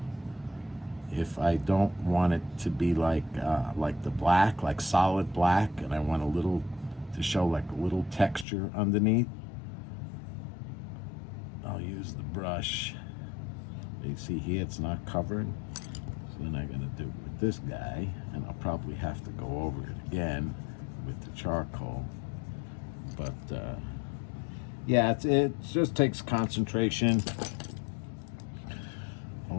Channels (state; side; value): drops out; right; at 8.5 s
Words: if I don't want it to be like the black, like solid black, and I want a little to show like a little texture underneath. I'll use the brush. You see here, it's not covered. So then I'm gonna do it with this guy, and I'll probably have to go over it again with the charcoal. But yeah, it just takes concentration, a